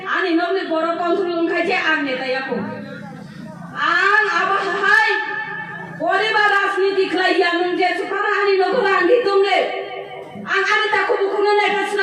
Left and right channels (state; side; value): identical; both; correlation 1.00